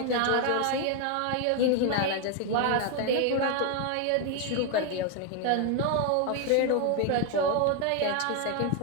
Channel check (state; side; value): different; both; correlation 0.01